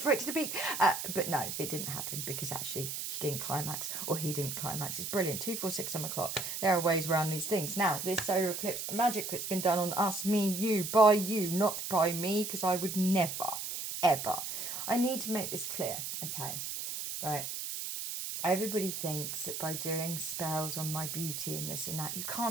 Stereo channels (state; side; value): noise; right; hiss, 5 dB below the sound